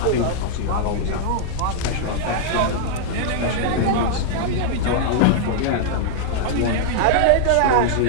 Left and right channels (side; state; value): both; different; correlation -0.01